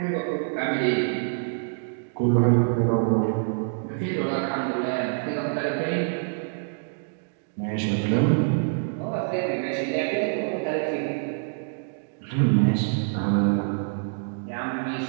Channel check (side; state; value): left; silent; digital silence